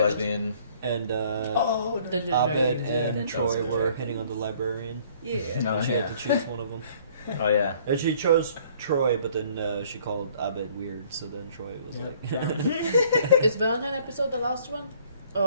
lesbian. And Dungeons Abed Dragons, and Troy were hitting on the librarian. Yeah. No, She yeah. had to choose one of them. Oh yeah. And she chose Troy, but then she called Abed weird, so then Troy was like... Is Valentine episode the last one?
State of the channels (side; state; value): both; inverted; correlation -0.58